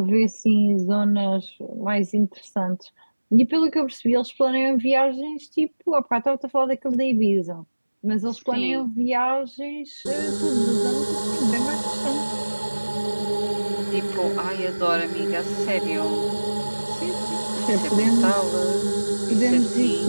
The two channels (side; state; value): both; inverted; correlation -1.00